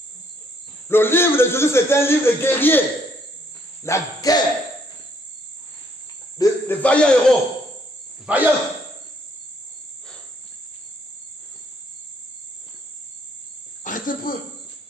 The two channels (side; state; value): both; normal; correlation 0.68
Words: Le livre de Josué, c'est un livre de guerrier. La guerre. Des vaillants héros. Vaillants.